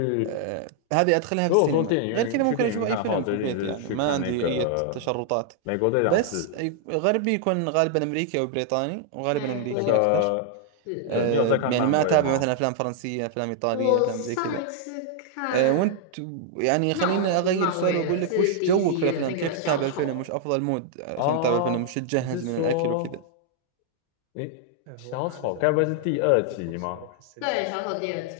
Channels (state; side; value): different; both; correlation 0.00